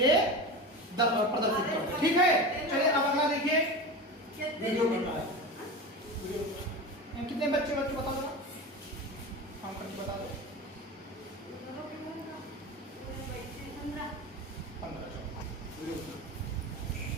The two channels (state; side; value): normal; both; correlation 0.27